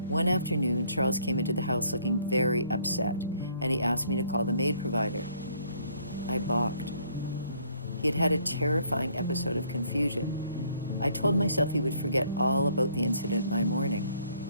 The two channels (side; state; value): both; inverted; correlation -0.62